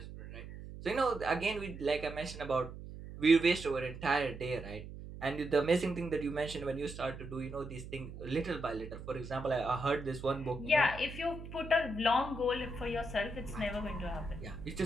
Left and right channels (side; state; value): right; noise; hum, 12 dB below the sound